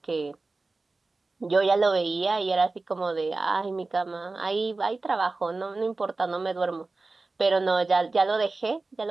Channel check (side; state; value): left; quieter; 3.5 dB